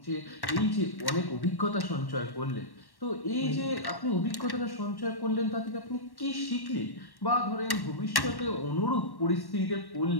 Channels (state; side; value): late; right; 1.1 ms